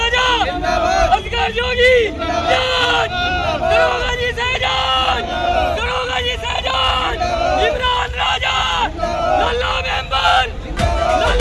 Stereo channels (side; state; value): both; identical; correlation 1.00